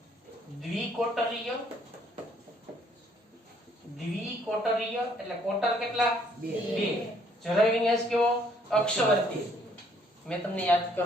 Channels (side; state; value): both; normal; correlation 0.65